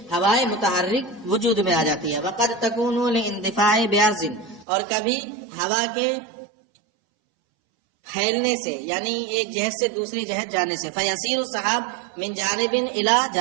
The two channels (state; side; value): drops out; left; at 4.7 s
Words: ہوائیں متحرک وجود میں آ جاتی ہے. وقد تکون لاندفاع بعرض، اور کبھی ہوا کے پھیلنے سے، یعنی ایک جہت سے دوسری جہت جانے سے. فیسیر السحاب من جانب الی